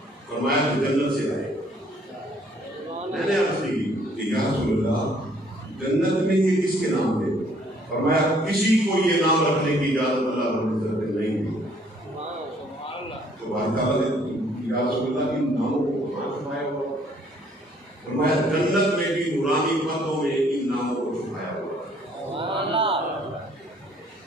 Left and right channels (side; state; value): both; normal; correlation 0.62